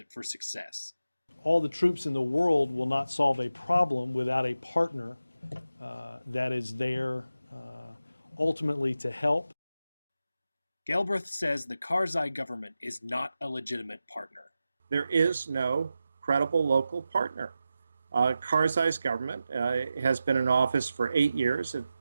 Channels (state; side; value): inverted; both; correlation -0.92